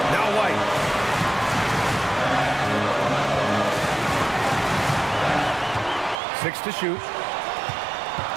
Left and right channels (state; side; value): drops out; left; at 6.2 s